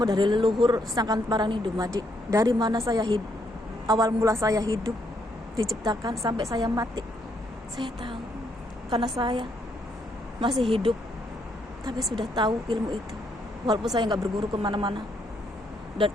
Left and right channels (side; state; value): both; normal; correlation 0.74